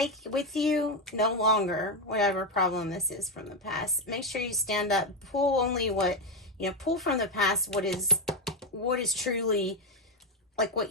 with you no longer whatever problem this is from the past. Make sure you stand up, pull only what, pull from the past what is truly, like, what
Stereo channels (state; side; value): normal; both; correlation 0.08